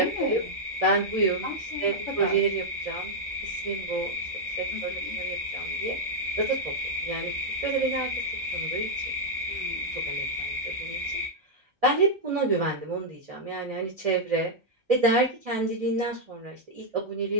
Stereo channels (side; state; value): both; normal; correlation -0.03